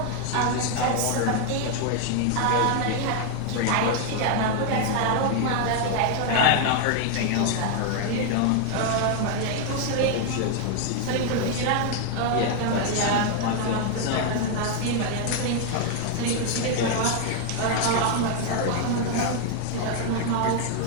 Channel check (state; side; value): different; both; correlation 0.01